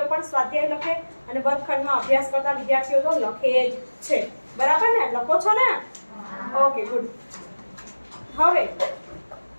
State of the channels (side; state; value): both; inverted; correlation -1.00